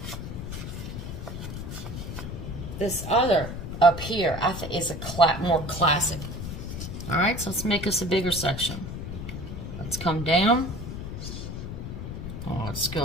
This other up here, I think, is a more classic. All right, so let's make us a bigger section. Let's come down. Let's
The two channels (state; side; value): noise; left; rumble, 7 dB below the sound